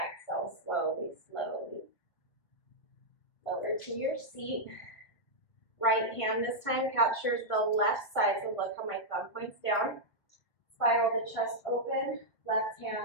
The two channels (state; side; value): late; right; 1.9 ms